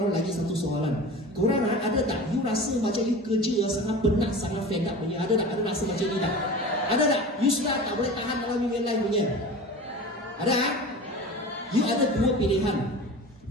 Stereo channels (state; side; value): normal; both; correlation 0.35